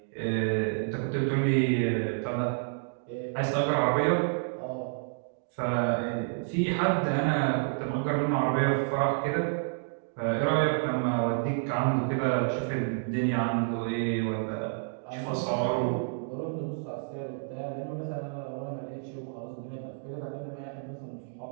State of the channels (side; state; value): left; silent; digital silence